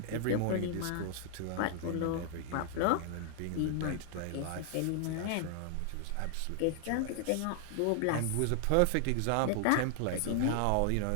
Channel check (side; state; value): both; different; correlation 0.00